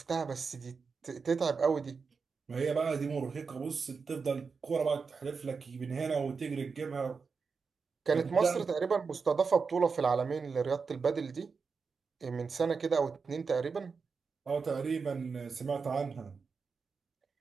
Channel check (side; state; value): left; quieter; 5.1 dB